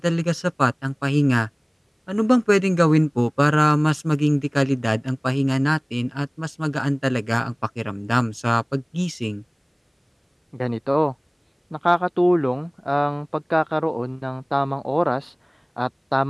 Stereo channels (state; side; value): identical; both; correlation 1.00